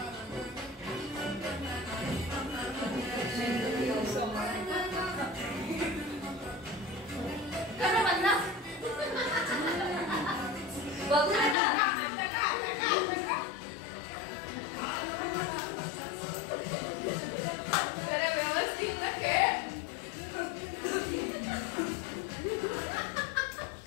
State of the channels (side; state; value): right; drops out; at 11.6 s